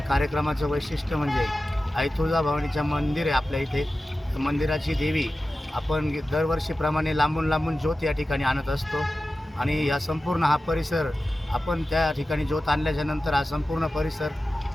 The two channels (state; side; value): normal; both; correlation 0.94